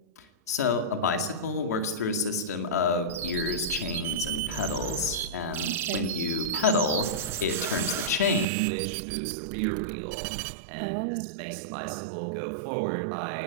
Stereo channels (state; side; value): drops out; left; at 8.5 s